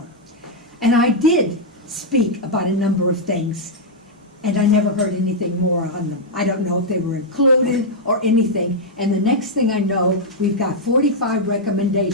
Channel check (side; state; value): both; normal; correlation -0.05